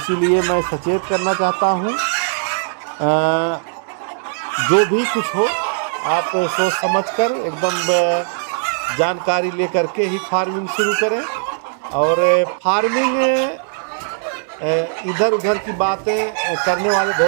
मैं सचेत करना चाहता हूँ, जो भी कुछ हो आप सोच समझकर एकदम जानकारी लेकर के ही फार्मिंग शुरू करें। और फार्मिंग इधर उधर की बातें करने वाले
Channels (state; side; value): silent; left; digital silence